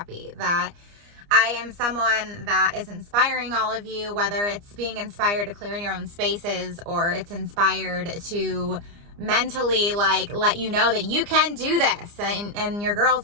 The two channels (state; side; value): late; left; 29 ms